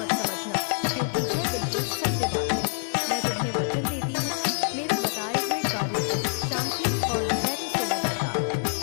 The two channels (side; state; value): right; silent; digital silence